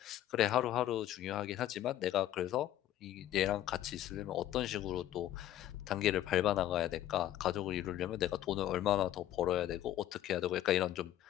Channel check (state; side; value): quieter; right; 12.8 dB